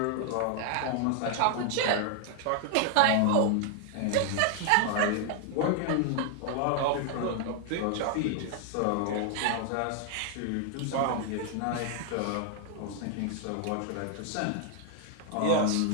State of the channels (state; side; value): different; both; correlation 0.00